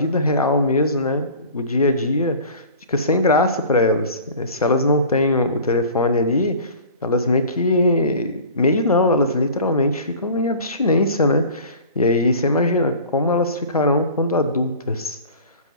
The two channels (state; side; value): inverted; both; correlation -0.41